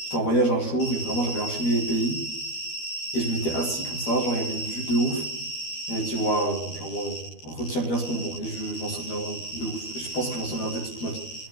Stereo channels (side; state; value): right; late; 13 ms